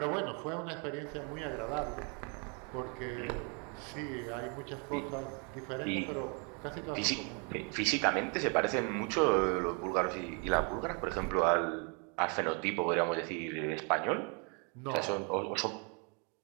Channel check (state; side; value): quieter; left; 35.7 dB